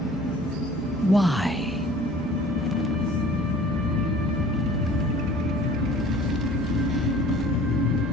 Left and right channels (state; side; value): normal; both; correlation 0.48